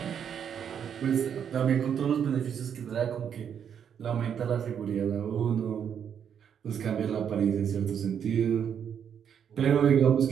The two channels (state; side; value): quieter; left; 8.2 dB